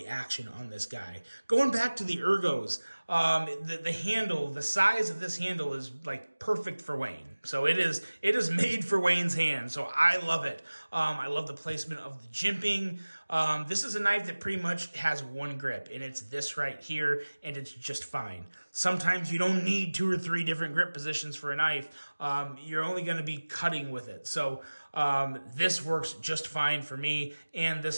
action on this guy. Going back to the ergos, the handle, the size of this handle is like perfect for Wayne. So it is made for Wayne's hand. So I love it. I love the placement of the jimping. This is a knife that pretty much has one grip, and it's this right here, and it's just fine. Sometimes you don't need 2 or 3 different grip positions for a knife. You're only going to be cutting with it. So This works just fine for me, and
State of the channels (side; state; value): both; inverted; correlation -1.00